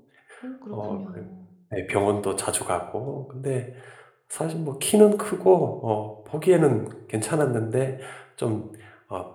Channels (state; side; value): identical; both; correlation 1.00